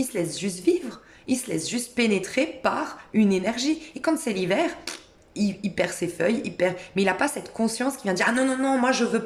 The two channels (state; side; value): identical; both; correlation 1.00